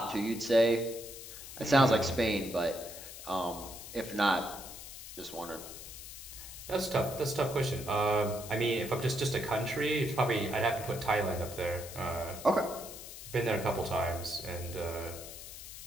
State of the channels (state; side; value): noise; left; hiss, 12 dB below the sound